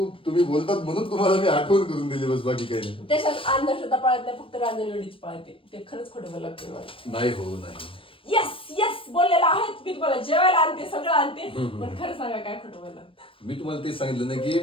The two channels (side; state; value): right; late; 0.26 ms